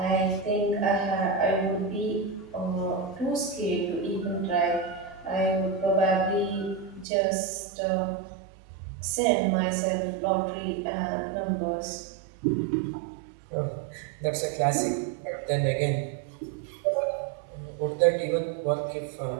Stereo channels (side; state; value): left; drops out; at 7.1 s